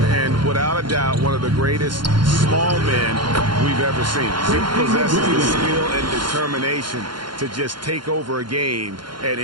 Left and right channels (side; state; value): left; late; 0.72 ms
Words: And without a doubt, one of the greatest small men we've ever seen. He possesses the skill and determination to just take over a game at